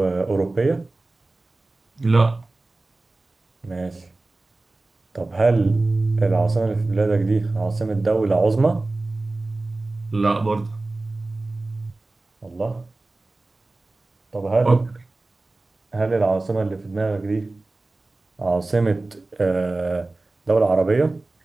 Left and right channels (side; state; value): left; quieter; 3.1 dB